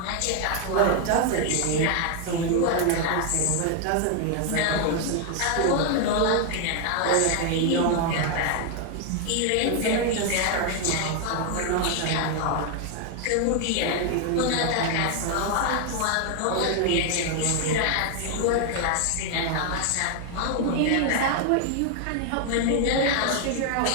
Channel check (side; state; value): both; different; correlation 0.00